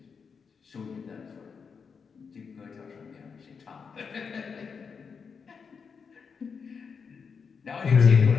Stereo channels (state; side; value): quieter; right; 5.8 dB